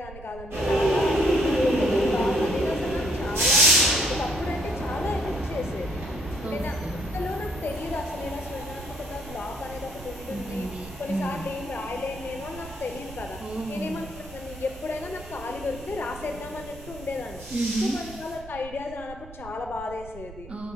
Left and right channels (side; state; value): right; noise; rumble, 16 dB below the sound